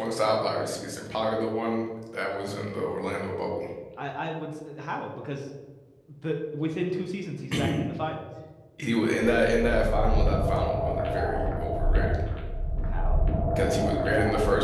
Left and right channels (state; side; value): identical; both; correlation 1.00